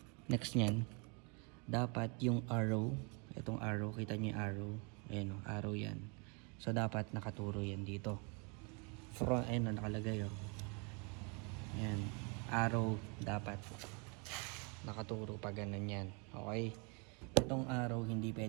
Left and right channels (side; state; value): left; quieter; 33.5 dB